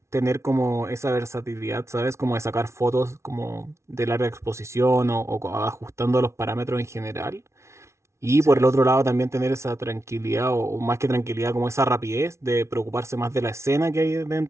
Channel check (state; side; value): late; left; 0.13 ms